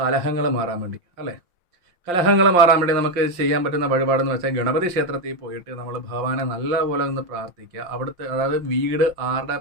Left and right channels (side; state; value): left; late; 5.7 ms